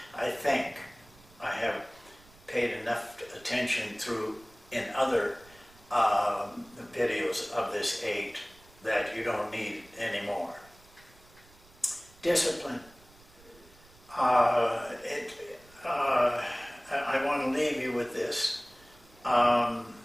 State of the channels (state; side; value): noise; right; rumble, 26 dB below the sound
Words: I think I have paid enough attention in other videos of this 8 that you don't need anymore. Discipline. I want to leave you with this.